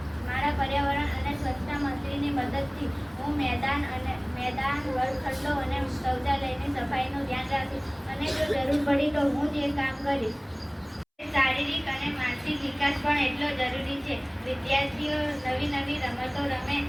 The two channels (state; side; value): identical; both; correlation 1.00